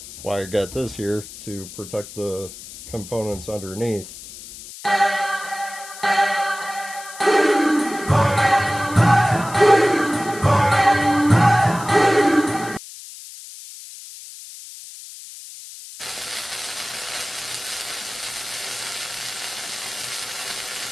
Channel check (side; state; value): left; noise; hiss, 14 dB below the sound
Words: why I got this here to protect the components underneath.